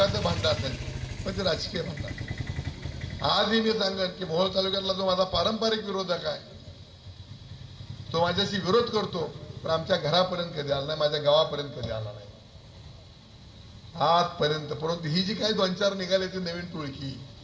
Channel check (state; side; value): identical; both; correlation 1.00